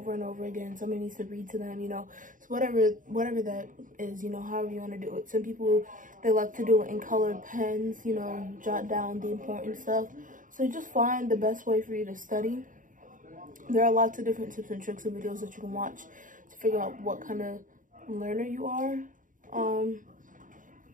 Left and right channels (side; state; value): left; late; 0.38 ms